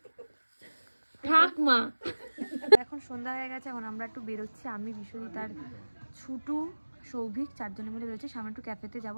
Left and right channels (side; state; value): both; inverted; correlation -1.00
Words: ঠাকমা এখন সন্ধ্যা হয়ে গেছে, এখন আমরা একটু বেরোচ্ছি, আমি বিশ্বজিৎ আর ছুটু সৌভিক 4 জনে মিলে বেরোচ্ছি। সামনে একটু ক্যাফেতে যাবো,